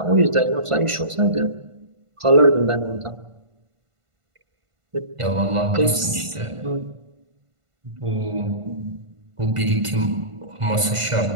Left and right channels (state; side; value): late; left; 1.5 ms